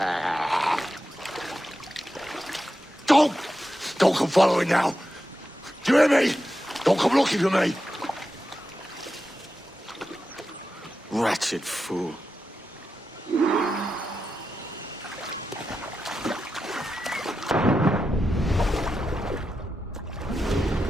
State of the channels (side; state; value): both; normal; correlation 0.89